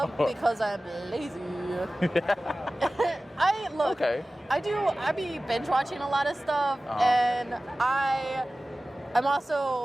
because I'm lazy. Okay. I be binge watching a lot of stuff, and I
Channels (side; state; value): both; normal; correlation 0.97